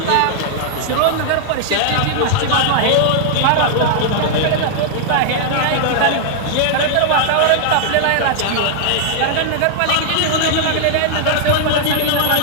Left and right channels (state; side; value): different; both; correlation -0.01